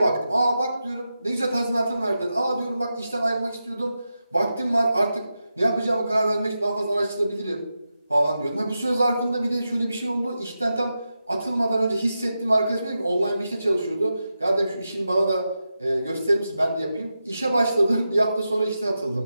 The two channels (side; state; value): both; inverted; correlation -0.90